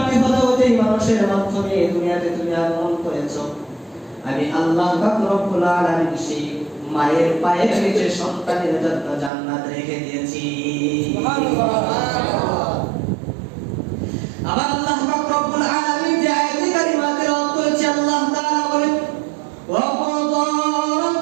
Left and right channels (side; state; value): left; drops out; at 9.3 s